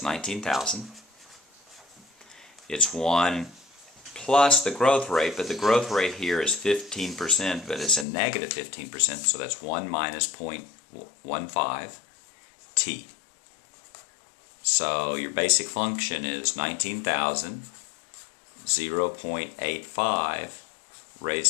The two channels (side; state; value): right; drops out; at 8.1 s